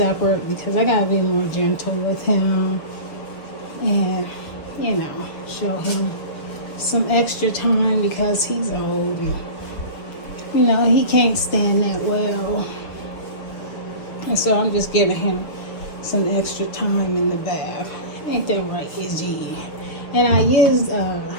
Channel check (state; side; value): late; right; 6.8 ms